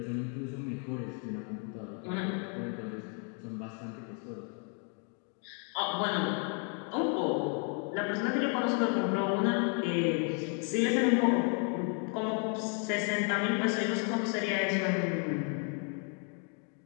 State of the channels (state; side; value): quieter; right; 39.7 dB